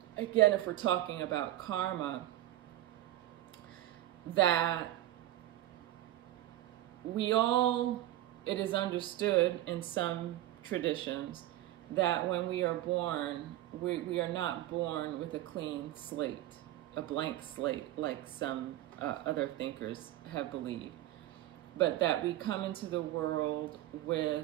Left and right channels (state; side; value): quieter; left; 14.3 dB